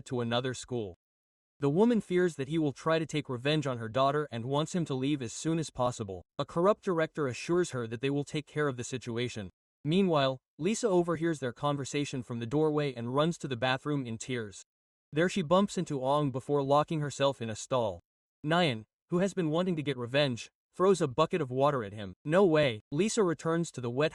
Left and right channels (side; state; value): both; identical; correlation 1.00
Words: to another school. The woman fears that he will try to take revenge on her daughter and wants him to leave as soon as possible. A corrupt director assures her that they will take care of the situation. Meanwhile, Lisa overhears their conversation from the doorway and runs to the bathroom in tears. There she bumps into Ong before locking herself in a stall. Nyan, who has been wanting to get revenge, throws a bucket of water at him. No way. Lisa returns to the wet